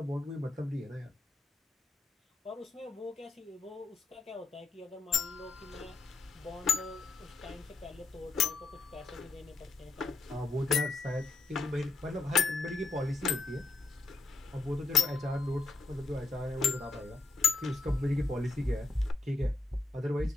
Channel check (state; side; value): quieter; right; 3.4 dB